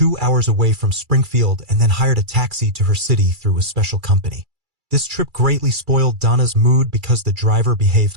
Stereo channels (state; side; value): late; left; 2.3 ms